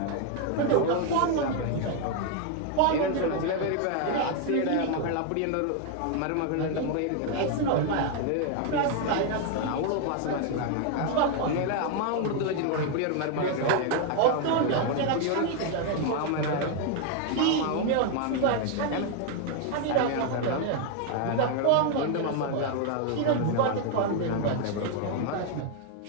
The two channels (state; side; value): different; both; correlation 0.00